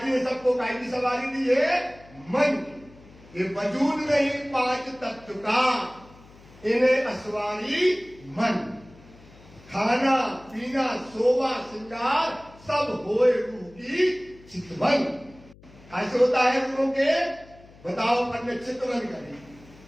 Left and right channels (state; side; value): noise; left; hum, 23 dB below the sound